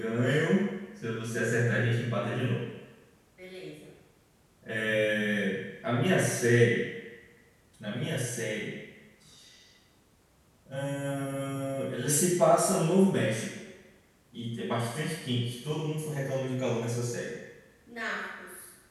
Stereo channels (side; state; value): both; identical; correlation 1.00